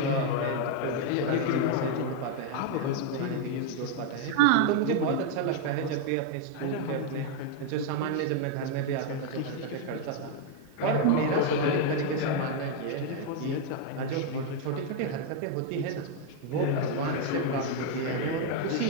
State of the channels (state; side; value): different; both; correlation 0.00